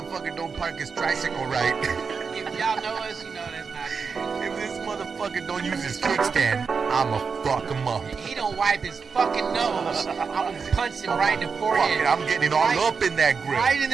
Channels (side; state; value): left; quieter; 5.4 dB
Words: don't park his tricycle right. If y'all know us, you know that's not good. If this motherfucker don't use his kickstand, I'ma fuck him up. He don't wipe his fucking nose. I'm gonna punch him right in the Fuck forehead. it, I'm getting all up in that grill. Right in